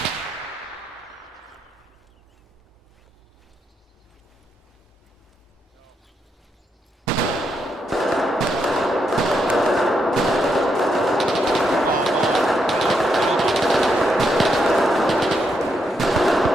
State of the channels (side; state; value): both; normal; correlation 0.80